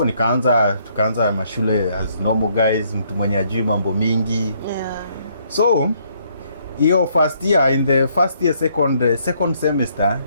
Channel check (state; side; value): inverted; both; correlation -0.69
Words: tukaanza mashule as normal guys, mtu mwenye ajui mambo mingi. Yeah. So hiyo first year, in the first year second semester,